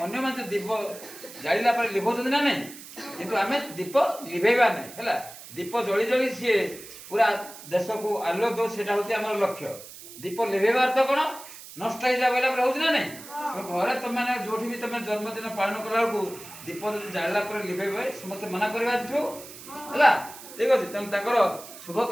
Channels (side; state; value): right; noise; hiss, 15 dB below the sound